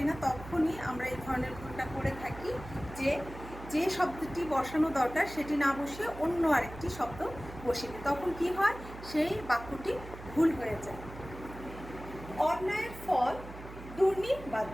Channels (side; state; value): right; noise; hum, 14 dB below the sound